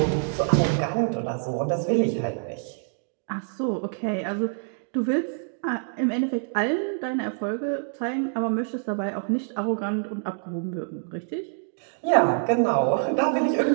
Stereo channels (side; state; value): left; silent; digital silence